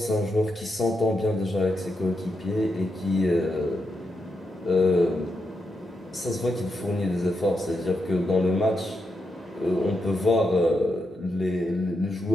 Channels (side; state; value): both; normal; correlation 0.84